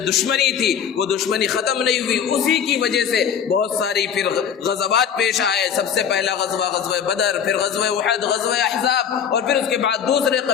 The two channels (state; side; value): quieter; right; 8.0 dB